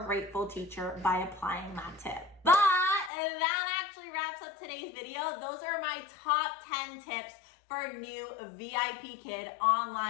teacher by applying that tip. But that actually wraps up today's video. Those are my top 10 tips for new VIPKid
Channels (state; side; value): drops out; right; at 3.1 s